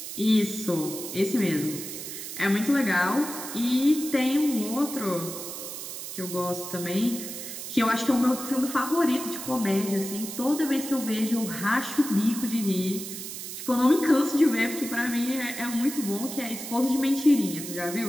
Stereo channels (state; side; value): noise; right; hiss, 8 dB below the sound